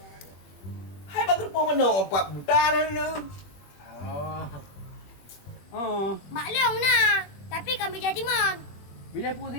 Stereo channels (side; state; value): right; late; 21 ms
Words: Hai bagus pun mana empat buta ni. Oh. Maklum nah. Tapi kami jadi mon. Bila pun